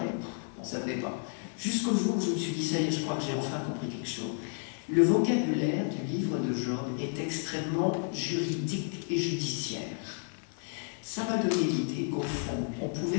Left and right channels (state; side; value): silent; right; 56 dB below the other